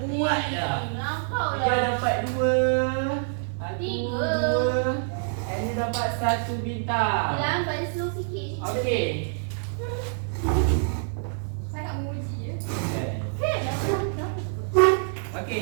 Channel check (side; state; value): left; silent; 61 dB below the other